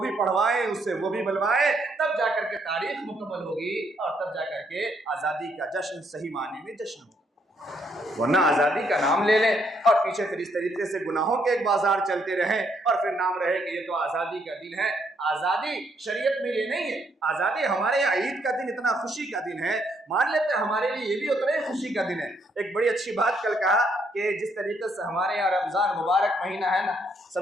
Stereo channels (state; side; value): normal; both; correlation 0.72